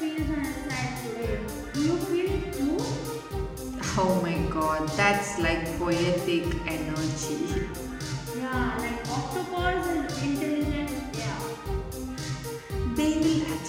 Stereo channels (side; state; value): both; identical; correlation 1.00